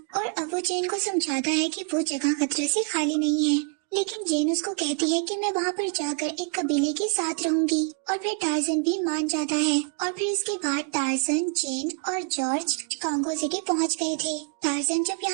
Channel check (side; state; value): left; quieter; 39.2 dB